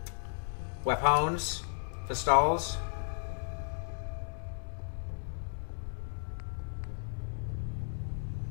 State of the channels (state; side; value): silent; right; digital silence